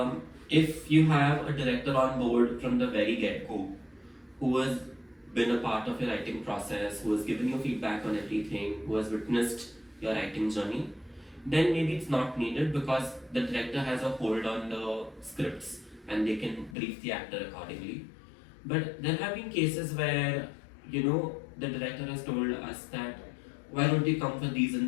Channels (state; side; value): drops out; right; at 16.8 s